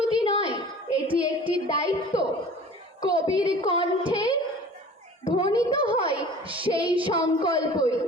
নয়, এটি একটি দায়িত্ব। কবির কণ্ঠে ধ্বনিত হয় সেই সংকল্পই।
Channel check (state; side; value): normal; both; correlation 0.43